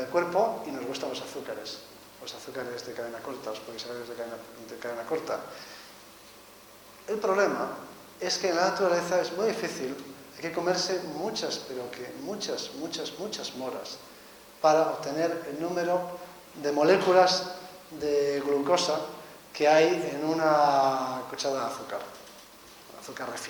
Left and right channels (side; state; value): both; identical; correlation 1.00